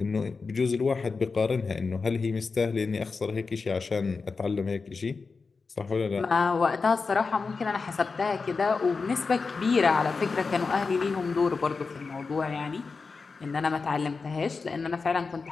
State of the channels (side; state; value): right; quieter; 4.5 dB